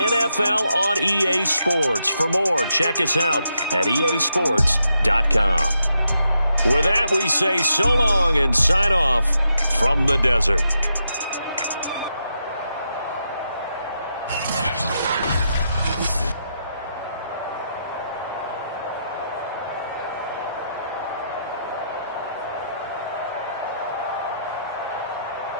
on EA Sports. For more, check us out at easports.com. With that, we say so long and sign off from the desert.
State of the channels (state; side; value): inverted; both; correlation -0.82